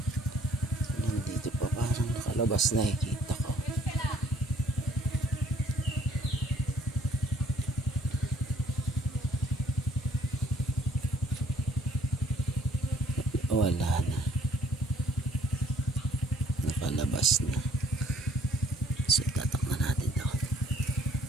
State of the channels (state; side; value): normal; both; correlation 0.62